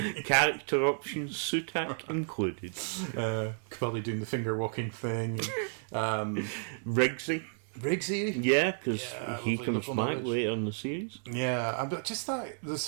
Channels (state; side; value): silent; left; 56 dB below the other